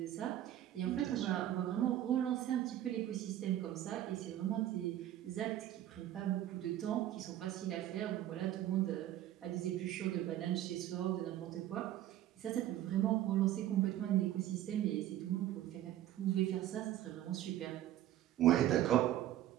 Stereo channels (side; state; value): left; quieter; 12.7 dB